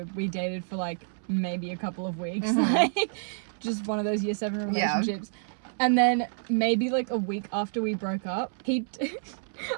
we dated for like maybe a couple of weeks, like just one of those year 7 relationships. And then maybe like a week after we broke up, I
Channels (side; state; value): left; silent; 59 dB below the other